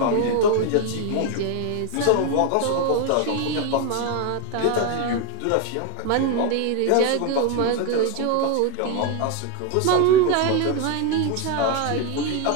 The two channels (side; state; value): both; different; correlation 0.02